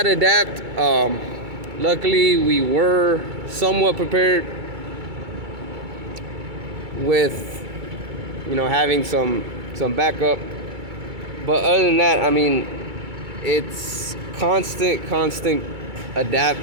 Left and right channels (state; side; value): late; left; 2.2 ms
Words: to adapt. Luckily, we were somewhat prepared with, having some backup. But other than that, it's constant